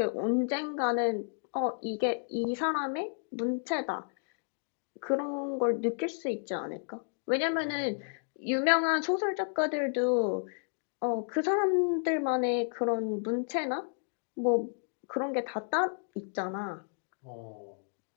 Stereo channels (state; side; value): silent; right; digital silence